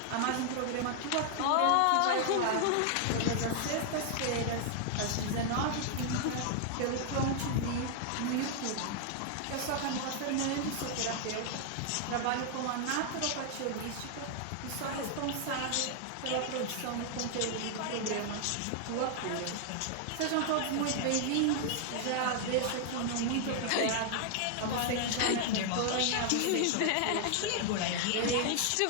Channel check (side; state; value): both; different; correlation 0.00